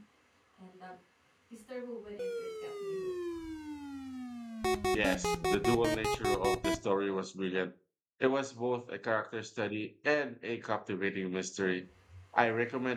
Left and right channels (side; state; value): both; identical; correlation 1.00